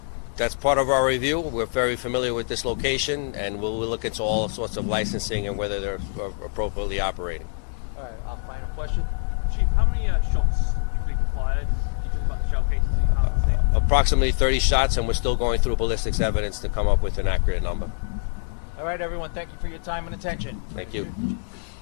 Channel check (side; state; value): right; silent; digital silence